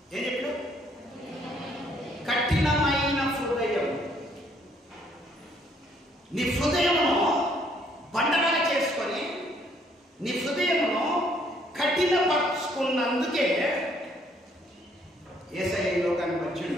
ఏం చెప్పాడు? కఠినమైన హృదయం. నీ హృదయమును బండగా చేసుకొని, నీ హృదయమును కఠినపరుచుకున్నందుకే యేసయ్య లోకానికి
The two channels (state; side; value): normal; both; correlation 0.66